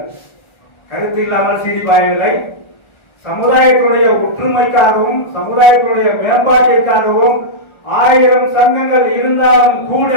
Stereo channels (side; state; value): right; late; 1.4 ms